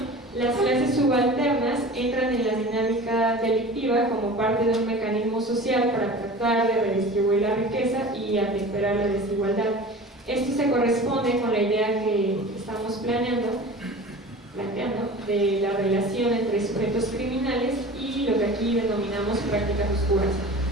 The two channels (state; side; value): normal; both; correlation 0.38